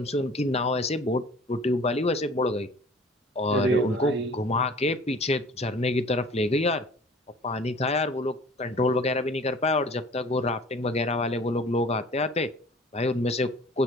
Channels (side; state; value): both; normal; correlation 0.48